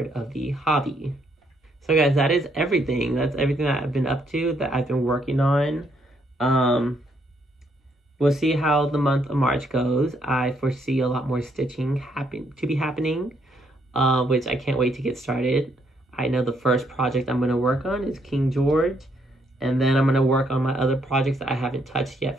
of the hobby. So guys, that is everything. That's everything that I've been up to, that I've been working on. We'll see how the month of March goes. I foresee a lot more stitching to be happening, which I can't wait to get started. I know the first project I'm going to work on is King George, and then I'm going to work on my other projects that I haven't touched yet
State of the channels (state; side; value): normal; both; correlation 0.73